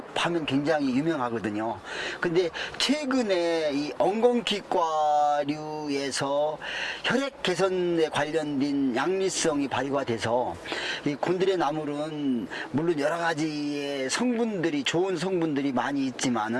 하면 굉장히 유명하거든요. 근데 최근에 이 엉겅퀴과류에서 혈액 개선에 관련된 양리성이 발휘가 돼서 이 곤드레 나물은 물론 여러 가지의 성분들이 좋은 성분들이 많이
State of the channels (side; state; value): both; identical; correlation 1.00